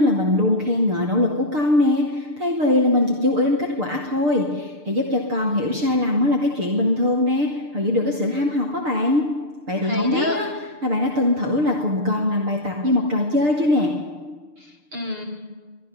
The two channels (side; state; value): left; late; 6.7 ms